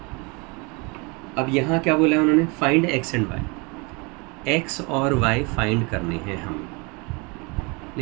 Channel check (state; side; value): quieter; left; 29.4 dB